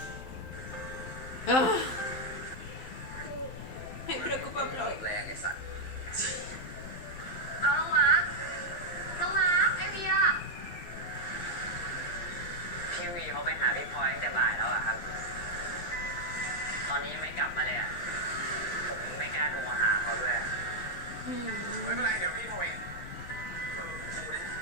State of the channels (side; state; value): right; late; 11 ms